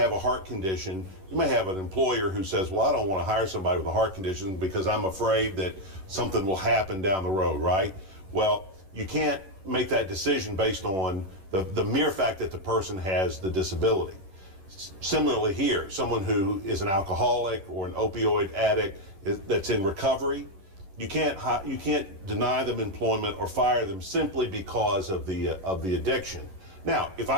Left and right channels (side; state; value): left; late; 11 ms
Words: a heart condition, you may have an employer who says, well, I don't want to hire somebody with a heart condition because I'm afraid that something will happen down the road, right? Well, you can't make that decision based on the mere fact that the person has the disability. Similarly here, someone who is an alcoholic or an opioid addict that's in recovery, you can't deny them employment or fire them simply because of the addiction. Now, if